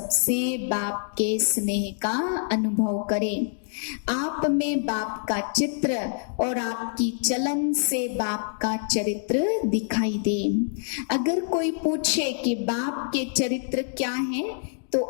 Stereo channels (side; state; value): right; silent; digital silence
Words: बाप के स्नेह का अनुभव करें। आप में बाप का चित्र और आपकी चलन से बाप का चरित्र दिखाई दे। अगर कोई पूछे कि बाप के चरित्र क्या है, तो